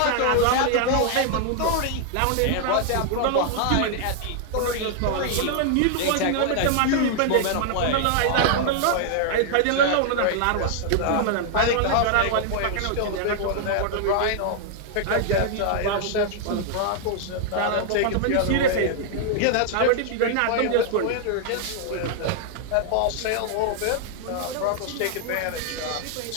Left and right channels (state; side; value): different; both; correlation 0.00